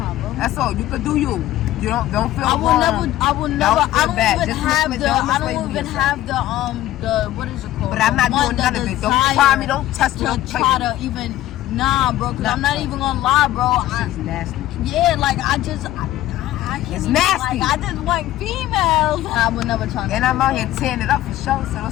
That's all. You can do you. You don't feel I will never. I don't even have the what is it called? But I'm not doing none of it. Don't try me. Don't test me. Don't try to even. Nah, bro. Cause I'm not even gonna lie, bro. It's nasty. Yeah, like I can't it's even, nasty. Like, I just want females. I would never try. And I'm out here tearing it up for sure. So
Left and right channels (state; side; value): quieter; right; 14.5 dB